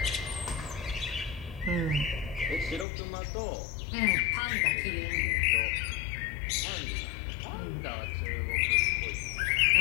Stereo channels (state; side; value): drops out; right; at 2.9 s